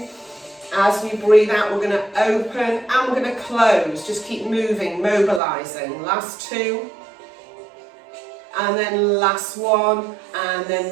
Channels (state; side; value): drops out; left; at 5.4 s